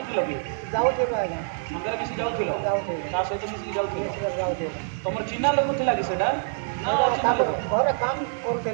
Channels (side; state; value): left; silent; digital silence